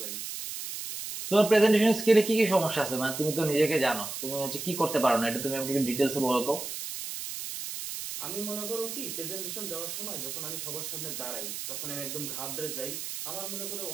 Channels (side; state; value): right; noise; hiss, 6 dB below the sound